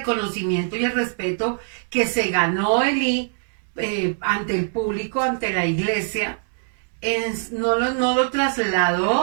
y el respeto que se ganó Elí ante el público, ante la iglesia, no lo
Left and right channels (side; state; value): left; silent; digital silence